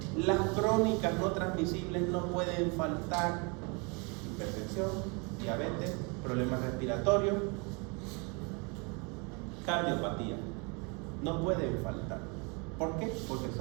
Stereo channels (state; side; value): quieter; left; 31.8 dB